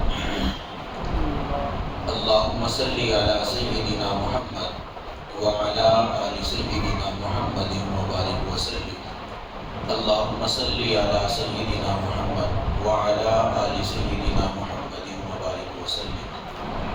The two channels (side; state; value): both; identical; correlation 1.00